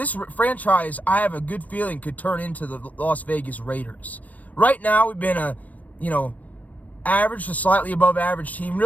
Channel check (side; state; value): right; late; 0.073 ms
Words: franchise, I have a good feeling, could turn into the Las Vegas Raiders. Right now, we've been average to slightly above average team.